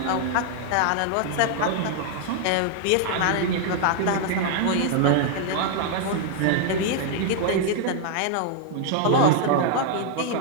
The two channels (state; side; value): different; both; correlation 0.00